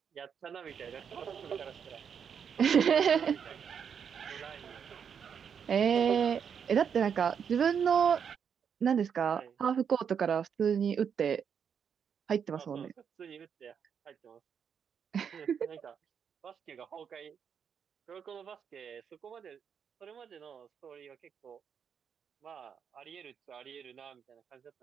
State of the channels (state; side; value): quieter; left; 7.3 dB